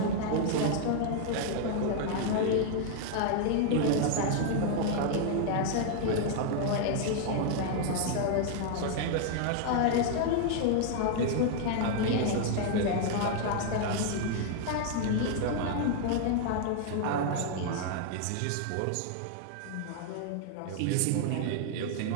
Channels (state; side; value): different; both; correlation 0.00